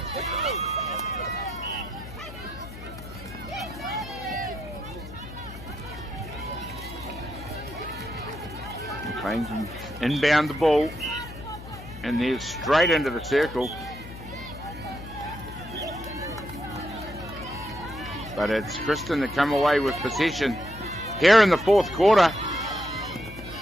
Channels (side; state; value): left; noise; hum, 14 dB below the sound